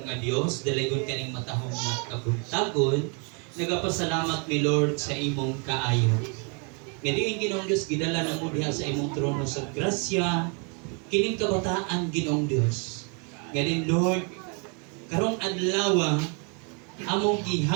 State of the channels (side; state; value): left; quieter; 36.4 dB